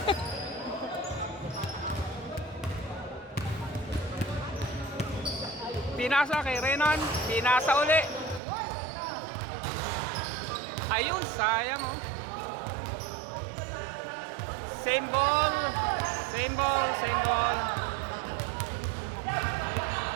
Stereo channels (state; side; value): drops out; left; at 8.4 s